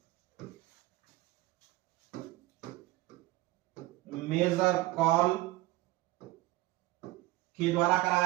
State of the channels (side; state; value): left; quieter; 18.3 dB